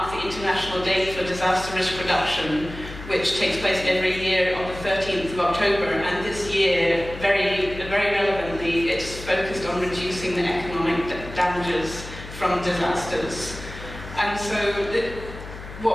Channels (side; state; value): left; noise; hum, 13 dB below the sound